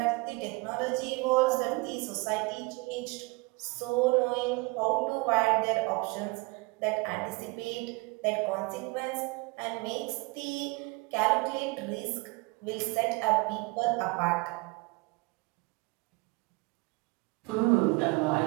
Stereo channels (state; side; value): quieter; left; 26.4 dB